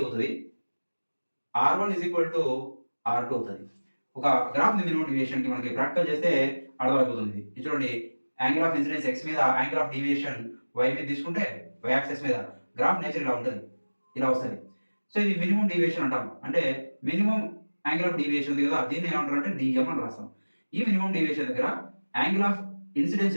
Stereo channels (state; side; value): inverted; both; correlation -1.00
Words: R1 is equal to R2 అవుతుంది. ఒక గ్రాఫ్ ఉంది మినిమం డివియేషన్ కి, మనకి ప్రాక్టికల్ చేస్తే అర్థమైపోతుంది. ఇది చూడండి, యాంగిల్ ఆఫ్ ఇన్సిడెన్స్ ఎక్స్ మీద, యాంగిల్ ఆఫ్ డీవియేషన్ వై మీద తీసుకుంటే వై యాక్సెస్ మీద గ్రాఫ్ నేచర్ ఇలా ఉంటుంది, ఇలా వస్తుంది. సో ఇది మినిమం డీవియేషన్ అంటాం, అంటే మినిమం యాంగిల్ ఆఫ్ డీవియేషన్ ఉంది కదా, దీన్ని ఏమంటారు అంటే డిఎం అని రాస్తాం. ఈ మినిమం డీవియేషన్ దగ్గర యాంగిల్ ఆఫ్ ఇన్సిడెన్స్